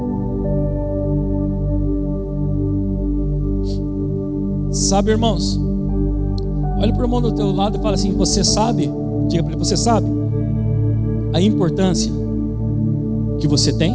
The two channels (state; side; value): identical; both; correlation 1.00